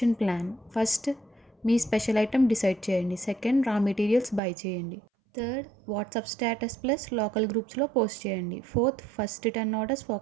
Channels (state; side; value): drops out; left; at 4.4 s